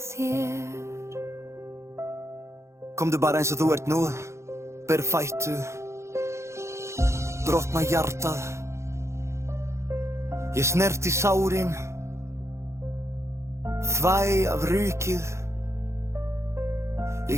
Komdu bara eins og þú ert nú, berfættu, brotna hjartað. Ég snerti sárin, þvæ af rykið.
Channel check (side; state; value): left; late; 0.14 ms